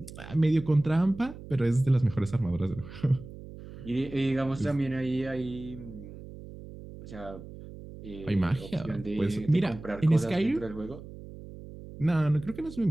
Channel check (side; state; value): right; noise; hum, 14 dB below the sound